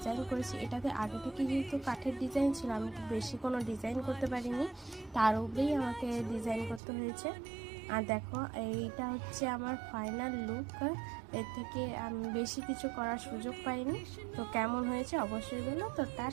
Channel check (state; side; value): drops out; left; at 6.8 s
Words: করেছি। এটাতে আগে থেকে যেহেতু কাঠের ডিজাইন ছিল, আমি বেশি কোনো ডিজাইন করতে পারিনি, তার উপরেই আমাকে ডিজাইন করতে হয়েছে। আর দেখো এইটা হচ্ছে আমার ফাইনাল লুক। এর থেকে আমি বেশি কিছু করার সুযোগ পাইনি। তো কেমন হয়েছে অবশ্যই বলো। তো